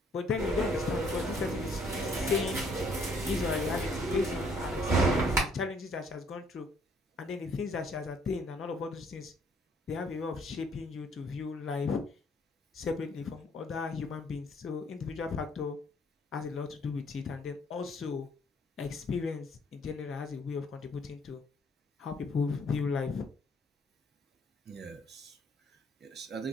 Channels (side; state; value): both; normal; correlation 0.64